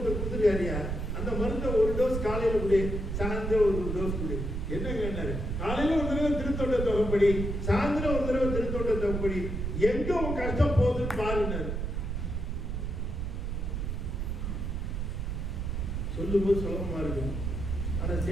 கொடுத்துருக்காரியா, அந்த மருந்தை 1 டோஸ் காலையில கொடு, சாயந்தரம் 1 டோஸ் கொடு. என்ன கேட்டாரு, காலையில 1 தடவை திருத்தொண்ட தொகைப்படி, சாயந்தரம் 1 தடவை திருத்தொண்ட தொகைப்படி, எங்க உன் கஷ்டம் போகுதுன்னு பாருன்னாரு. சொல்லும்போது சுலபமா இருக்கும், ஆனா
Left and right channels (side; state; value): right; noise; rumble, 2 dB below the sound